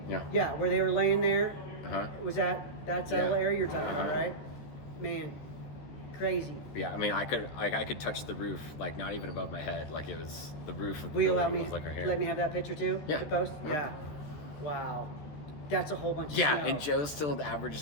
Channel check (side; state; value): right; late; 14 ms